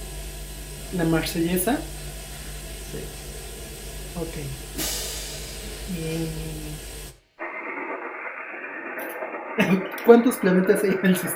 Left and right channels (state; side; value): identical; both; correlation 1.00